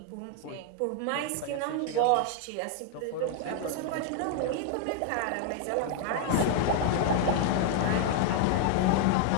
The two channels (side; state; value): both; different; correlation 0.00